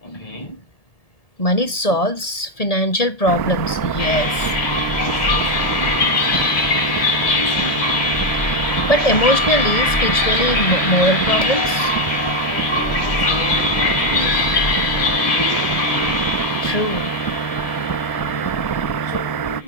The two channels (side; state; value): right; late; 1.8 ms